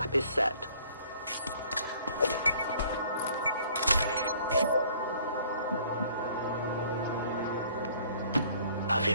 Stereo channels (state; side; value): inverted; both; correlation -0.57